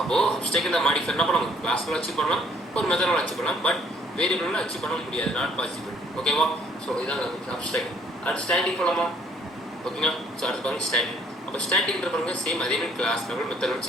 அப்ஸ்ட்ராக்ட் மாடிஃபை என்ன பண்ணலாம்? கிளாஸ்ல அச்சீவ் பண்ணலாம், ஒரு மெத்தடில் அச்சீவ் பண்ணலாம். பட் வேரியபிளில் அச்சீவ் பண்ண முடியாது. Not possible. ஓகேவா? ஸோ இதான் அப்ஸ்ட்ராக்ட். அடுத்து ஸ்டாட்டிக் போகலாமா? ஓகேங்களா? ஸோ அடுத்து பாருங்க ஸ்டாட்டிக். அப்போ ஸ்டாட்டிக்ன்ற பாருங்க சேம் அதே மாதிரி கிளாஸ் லெவல் மெத்தட்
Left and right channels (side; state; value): both; normal; correlation 0.61